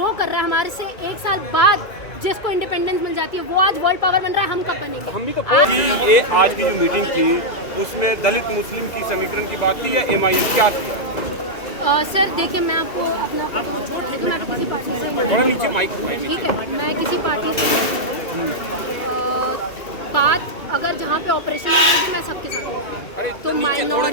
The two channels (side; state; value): right; late; 2.3 ms